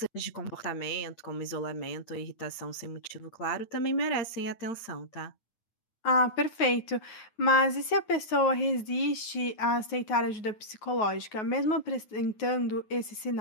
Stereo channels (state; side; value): late; right; 9.4 ms